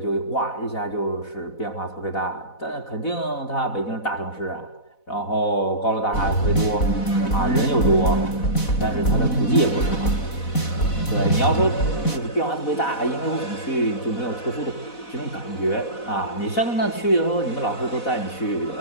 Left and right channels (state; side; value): late; right; 4.1 ms